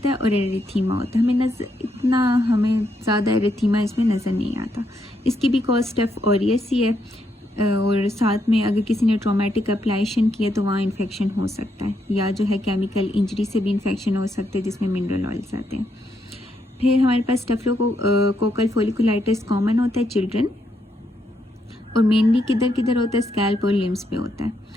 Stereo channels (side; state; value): both; normal; correlation 0.78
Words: है और एरिथीमा होता है। हमें ज़्यादा एरिथीमा इसमें नज़र नहीं आता। इसकी भी कॉज स्टेफ ऑरियस ही है, और साथ में अगर किसी ने ट्रॉमेटिक एप्लाइशन किया तो वहाँ इन्फेक्शन हो सकता है, या जो है केमिकल इंजरी से भी इन्फेक्शन हो सकते हैं जिसमें मिनरल ऑयल्स आते हैं। फिर हमारे पास स्टेफिलोकोकल फोलिकुलाइटिस कॉमन होता है चिल्ड्रन, और मेनली किधर किधर होता है, स्कैल्प और लिम्स पे होता है।